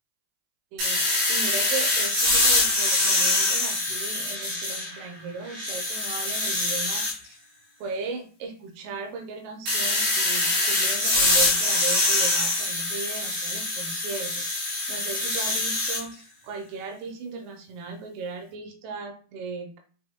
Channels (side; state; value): left; late; 18 ms